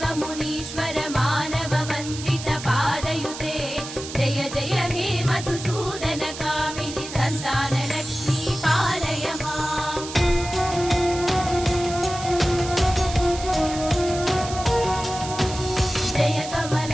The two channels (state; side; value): noise; right; hiss, 10 dB below the sound